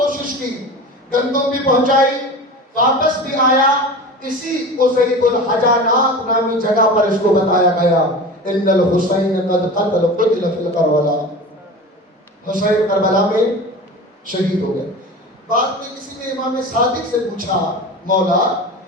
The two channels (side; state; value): both; normal; correlation 0.33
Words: کی، گندم بھی پہنچائی، واپس بھی آیا. اسی قصیب الحجانات نامی جگہ پر اس کو بتایا گیا ان الحسین قد قتل فی کربلا، حسین کربلا میں شہید ہو گئے. بعد میں کسی نے امام صادق سے پوچھا مولا